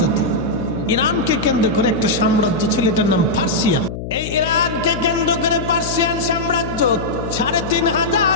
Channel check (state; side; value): noise; left; hum, 8 dB below the sound